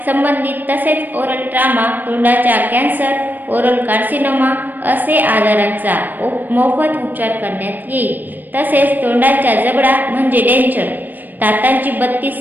संबंधित तसेच ओरल ट्रामा, तोंडाचा कॅन्सर, ओरल कार्सिनोमा असे आजारांचा मोफत उपचार करण्यात येईल. तसेच तोंडाचा जबडा म्हणजे डेंचर, दातांची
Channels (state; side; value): late; left; 0.088 ms